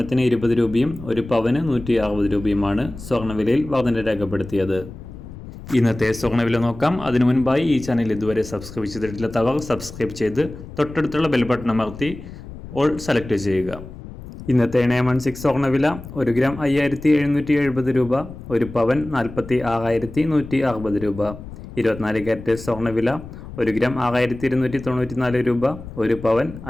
20 രൂപയും ഒരു പവന് 160 രൂപയുമാണ് സ്വർണ്ണവിലയിൽ വർധന രേഖപ്പെടുത്തിയത്. ഇന്നത്തെ സ്വർണ്ണവില നോക്കാം. അതിനു മുൻപായി ഈ ചാനൽ ഇതുവരെ സബ്സ്ക്രൈബ് ചെയ്തിട്ടില്ലാത്തവർ സബ്സ്ക്രൈബ് ചെയ്ത് തൊട്ടടുത്തുള്ള ബെൽ ബട്ടൺ അമർത്തി ഓൾ സെലക്ട് ചെയ്യുക. ഇന്നത്തെ 916 സ്വർണ്ണവില 1 ഗ്രാം 5770 രൂപ, ഒരു പവൻ 46,160 രൂപ. 24 ക്യാരറ്റ് സ്വർണ്ണവില 1 ഗ്രാം 6294 രൂപ, ഒരു പവൻ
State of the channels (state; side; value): noise; left; rumble, 14 dB below the sound